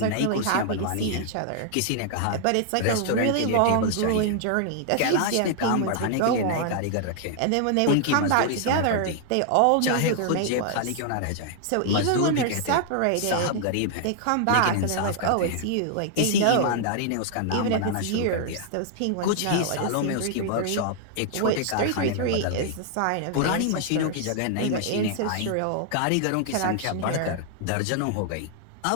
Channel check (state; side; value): different; both; correlation -0.01